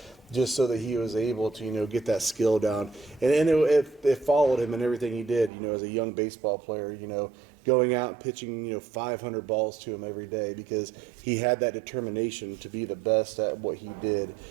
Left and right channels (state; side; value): drops out; left; at 5.5 s